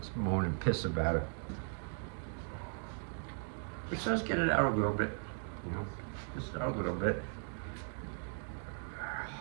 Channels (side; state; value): left; silent; 53 dB below the other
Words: moan and piss about it. Which does get it out a little bit, just out a little bit.